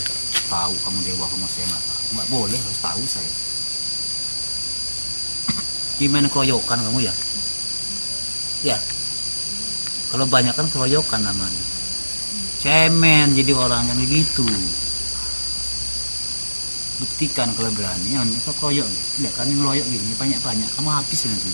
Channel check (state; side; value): inverted; both; correlation -1.00